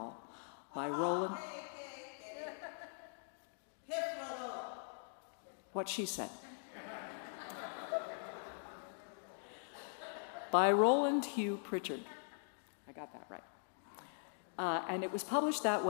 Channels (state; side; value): silent; right; digital silence